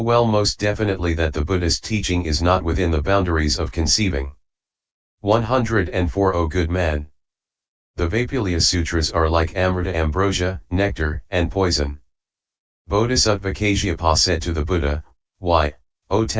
most definitely that the Buddhist teaching is not within the boundaries of conceiving. 104 O good man. The Vaipulia Sutras are like amrita, ambrosia, nectar, and poison. Bodhisattva Kasyapa said to the Buddha, "Why, O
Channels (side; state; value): both; identical; correlation 1.00